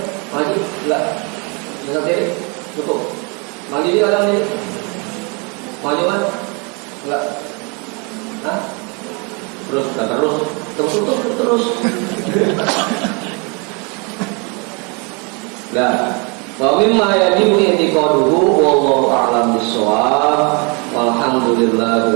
Maju? Enggak. Bisa kiri? Tutup. Maju di kadang ini. Maju kan? Enggak. Hah? Terus tutup terus. Nah, wa mimma yajibu i'tiqaduhu wallahu a'lam bissawab.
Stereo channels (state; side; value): quieter; left; 32.5 dB